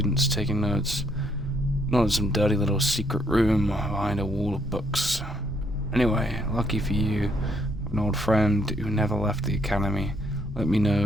taking notes. Not in some dirty little secret room behind a wall of books. Anyway, lucky for you, I have an old friend who never left the academy. Let me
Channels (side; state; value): both; normal; correlation 0.71